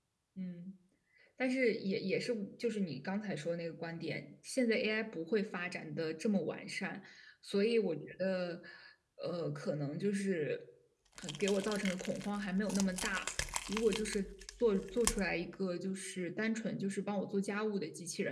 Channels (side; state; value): both; identical; correlation 1.00